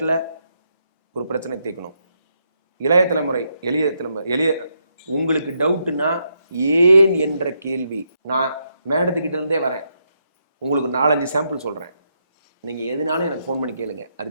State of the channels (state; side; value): inverted; both; correlation -0.79